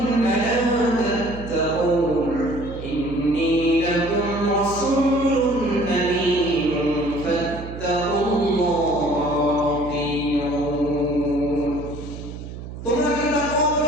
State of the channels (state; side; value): noise; right; hum, 11 dB below the sound